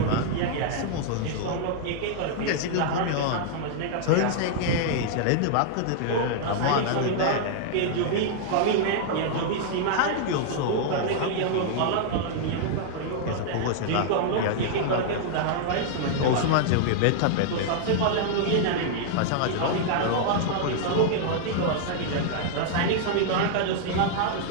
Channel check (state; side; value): different; both; correlation -0.01